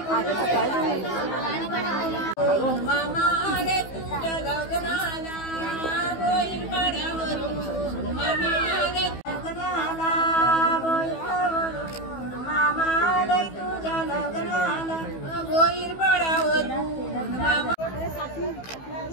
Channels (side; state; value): right; late; 15 ms